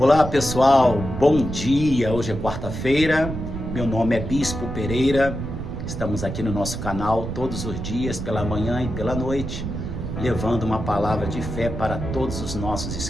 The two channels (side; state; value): right; noise; rumble, 6 dB below the sound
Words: pessoal, bom dia, hoje é quarta-feira, meu nome é Bispo Pereira, estamos aqui no nosso canal todos os dias, pela manhã e pela noite, levando uma palavra de fé para todos os nossos